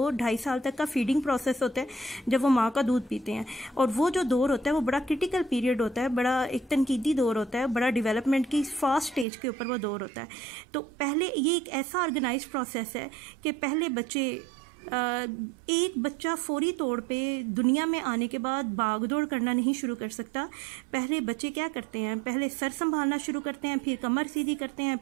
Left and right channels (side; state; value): left; drops out; at 9.2 s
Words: साल तक का फीडिंग प्रोसेस होता है, जब वो माँ का दूध पीते हैं। और वो जो दौर होता है वो बड़ा क्रिटिकल पीरियड होता है, बड़ा एक तनकीदी दौर होता है, बड़ा डेवलपमेंट की फास्ट स्टेज के ऊपर वो दौर होता है। तो पहले ये एक ऐसा ऑर्गेनाइज्ड प्रोसेस है कि पहले बच्चे एक बच्चा फौरी तौर पे दुनिया में आने के बाद भाग दौड़ करना नहीं शुरू कर सकता। पहले बच्चे क्या करते हैं? पहले सर संभालना शुरू करते हैं, फिर कमर सीधी करते हैं,